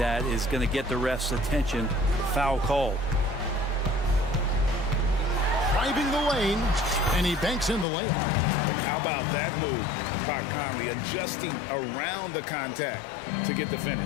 is going to get the ref's attention. Foul call. Driving the lane, and he banks in the layup. And how about that move? Pat Conley adjusting around the contact to get the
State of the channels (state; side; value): drops out; right; at 7.9 s